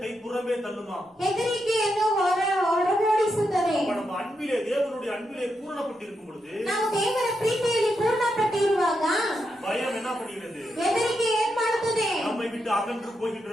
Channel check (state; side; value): normal; both; correlation 0.84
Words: புறம்பே தள்ளுமா. ಹೆದರಿಕೆಯನ್ನು ಹೊರಗೋಡಿಸುತ್ತದೆ. நம்ம அன்பிலே, தேவனுடைய அன்பிலே பூரணப்பட்டிருக்கும் பொழுது, ನಾವು ದೇವರ ಪ್ರೀತಿಯಲ್ಲಿ ಪೂರ್ಣಪಟ್ಟಿರುವಾಗ பயம் என்ன பண்ணுகிறது? ಹೆದರಿಕೆ ಏನ್ ಮಾಡುತ್ತದೆ? நம்மை விட்டு அகன்று